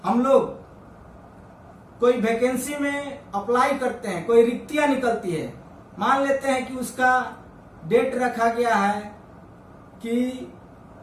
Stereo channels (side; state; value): both; identical; correlation 1.00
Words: हम लोग कोई वैकेंसी में अप्लाई करते हैं, कोई रिक्तियां निकलती है, मान लेते हैं कि उसका डेट रखा गया है कि